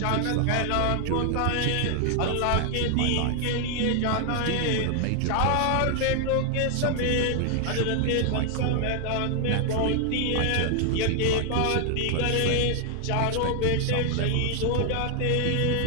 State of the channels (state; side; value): different; both; correlation 0.00